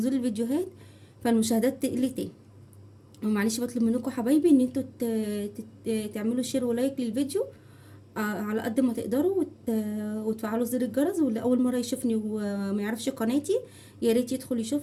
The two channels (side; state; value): both; identical; correlation 1.00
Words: الفيديوهات، فالمشاهدات تقل تاني. ومعلش بطلب منكم حبايبي ان انتوا تعملوا شير ولايك للفيديو على قد ما تقدروا، وتفعلوا زر الجرس. واللي اول مره يشوفني وما يعرفش قناتي يا ريت يدخل